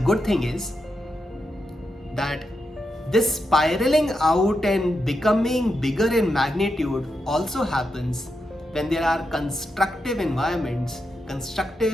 thing is that this spiraling out and becoming bigger in magnitude also happens when there are constructive environments,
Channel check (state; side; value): normal; both; correlation 0.86